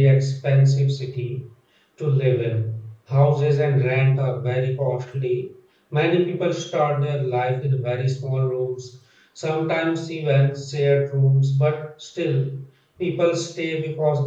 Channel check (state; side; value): identical; both; correlation 1.00